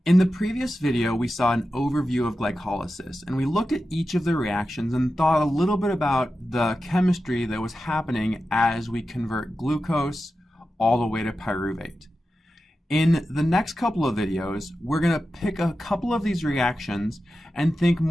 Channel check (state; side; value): normal; both; correlation 0.92